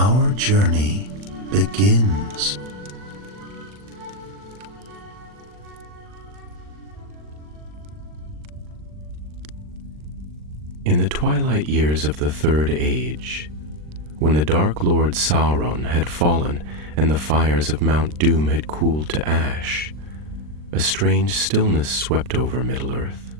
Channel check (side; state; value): left; late; 40 ms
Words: journey begins. In the twilight years of the Third Age, when the Dark Lord Sauron had fallen and the fires of Mount Doom had cooled to ash, a strange stillness swept over Middle-earth.